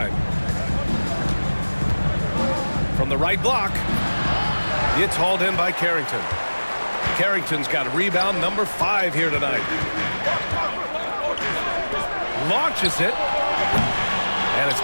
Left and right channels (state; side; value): inverted; both; correlation -1.00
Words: From the right block. It's hauled in by Carrington. Carrington's got rebound number 5 here tonight. Launches it. And it's